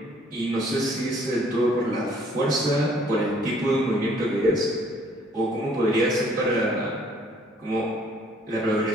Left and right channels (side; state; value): both; normal; correlation 0.61